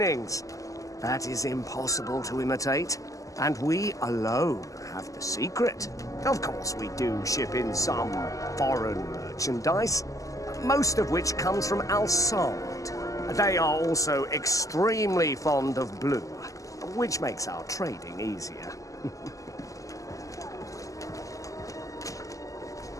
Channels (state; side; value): late; right; 0.16 ms